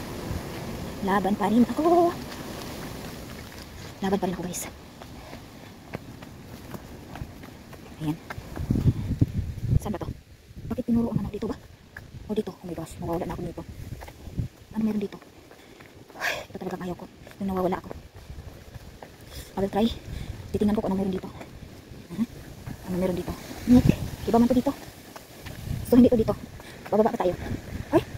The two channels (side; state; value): both; identical; correlation 1.00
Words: Laban pa rin ako. Laban pa rin ako guys. Ayan. Saan ba to? Bakit tinuro ang ano dito ba? O dito. Oh my gosh. Nawawala na ako dito. Ano meron dito? Ito talagang ayaw ko. Yung nawawala ako. I will try. Titingnan ko kung ano meron dito. Ano meron dito? Nick. Iba man to dito. So hindi to dito. Bababa pa tayo. Ay,